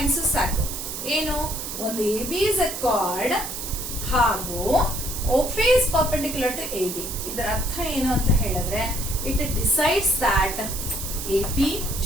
ಸಾಕು. ಏನು? ಒಂದು AB is a chord ಹಾಗೂ OP is perpendicular to AB. ಇದರ ಅರ್ಥ ಏನು ಅಂತ ಹೇಳಿದ್ರೆ, it decides that AP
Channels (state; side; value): noise; right; hiss, 6 dB below the sound